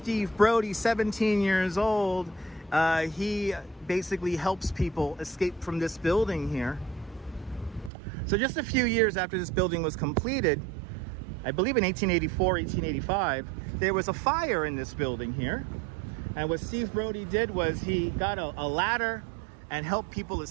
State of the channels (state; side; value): drops out; left; at 7.9 s